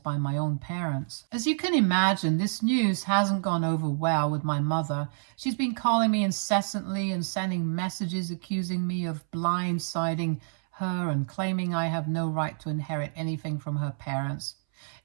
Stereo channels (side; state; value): left; silent; 59 dB below the other